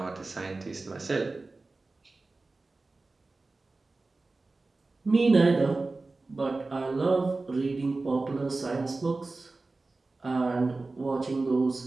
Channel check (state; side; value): quieter; left; 3.5 dB